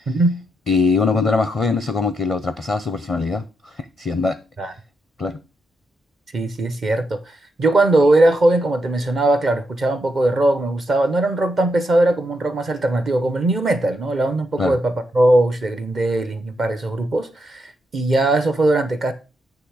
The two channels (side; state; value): both; normal; correlation 0.82